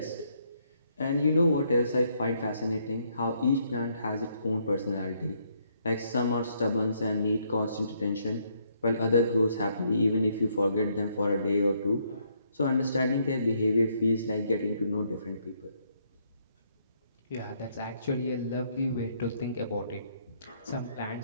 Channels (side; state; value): both; inverted; correlation -0.72